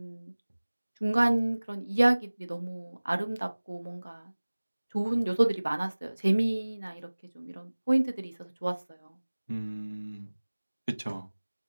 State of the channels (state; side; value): inverted; both; correlation -1.00